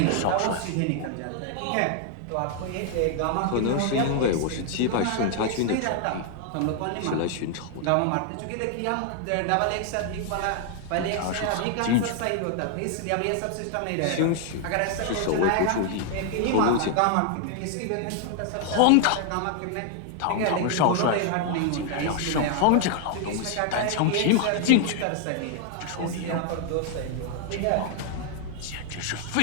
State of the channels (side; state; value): both; different; correlation 0.00